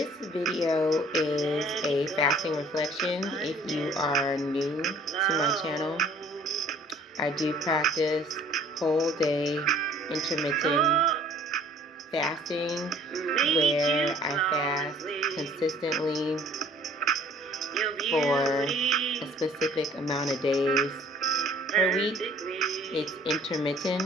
video is a fasting reflection. If you are new to my channel, I do practice whole day intermittent fasting where I fast consistently for a specific amount of days per week. It's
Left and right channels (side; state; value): both; normal; correlation 0.55